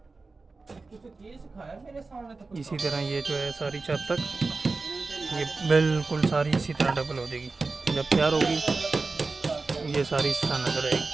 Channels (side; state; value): left; quieter; 3.8 dB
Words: इसी तरह ये जो है सारी छत तक ये बिल्कुल सारी इसी तरह डबल हो जाएगी। जब तैयार होगी ये सारी इस तरह नजर